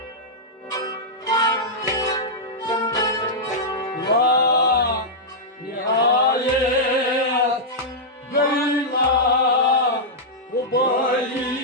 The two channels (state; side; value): normal; both; correlation -0.09